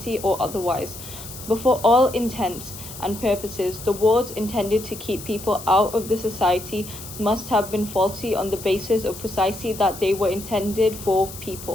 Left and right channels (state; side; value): noise; left; hiss, 13 dB below the sound